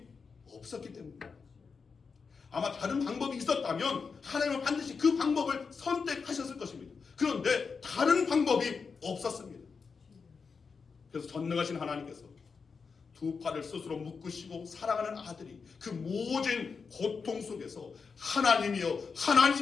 없었기 때문입니다. 아마 다른 방법이 있었다면 하나님은 반드시 그 방법을 선택하셨을 것입니다. 그런데 다른 방법이 없었습니다. 그래서 전능하신 하나님께서 두 팔을 스스로 묶으시고 사랑하는 아들이 그 모진 고통 속에서 하나님이여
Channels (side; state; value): right; quieter; 5.3 dB